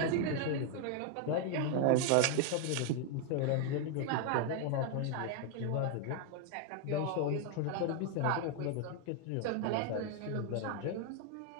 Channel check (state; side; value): different; both; correlation 0.01